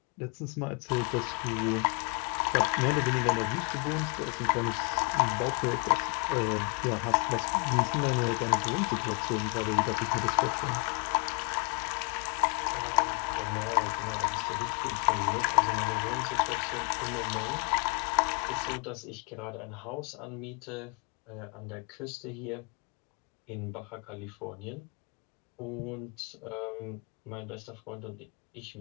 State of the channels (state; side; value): quieter; right; 34.5 dB